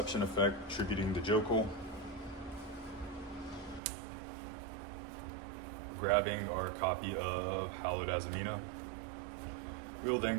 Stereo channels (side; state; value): left; drops out; at 3.8 s